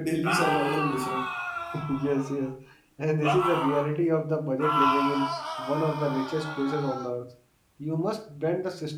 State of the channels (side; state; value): both; identical; correlation 1.00